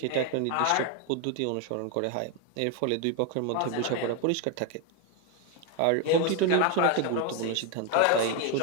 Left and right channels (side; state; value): both; different; correlation 0.01